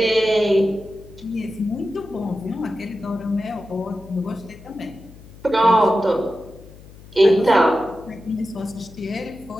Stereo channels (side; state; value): left; noise; hum, 20 dB below the sound